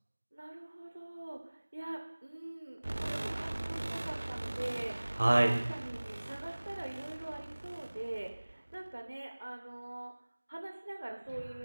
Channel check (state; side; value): inverted; both; correlation -1.00